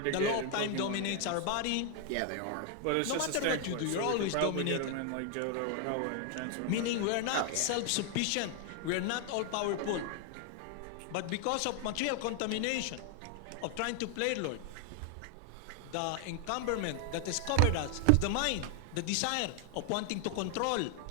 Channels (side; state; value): both; different; correlation 0.00